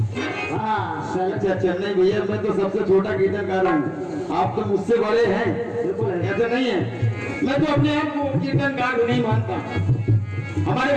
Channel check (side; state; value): both; identical; correlation 1.00